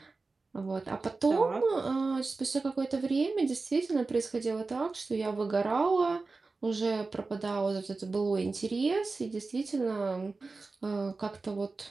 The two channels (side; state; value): left; quieter; 3.8 dB